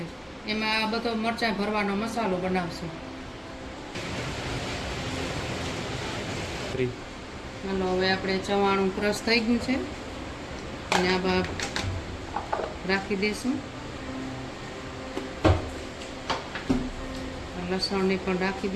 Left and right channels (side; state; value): both; identical; correlation 1.00